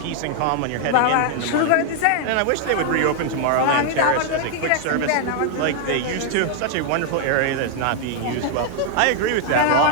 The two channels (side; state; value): both; different; correlation 0.00